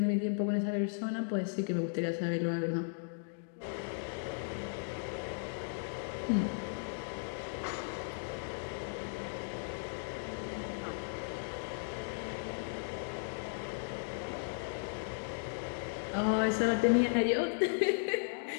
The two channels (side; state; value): right; silent; digital silence